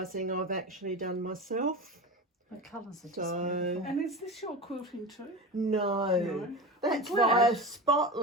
I've actually done myself. The colours are just So beautiful. And is this your quilting too? no, that's I'm glad. via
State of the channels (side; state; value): both; normal; correlation 0.27